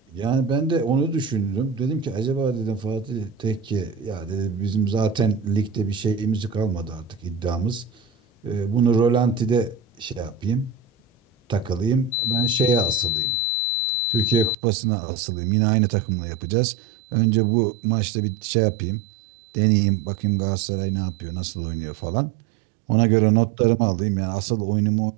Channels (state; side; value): drops out; left; at 14.6 s